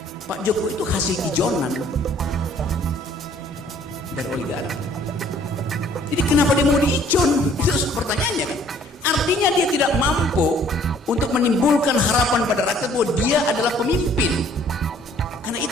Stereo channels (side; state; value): both; normal; correlation 0.58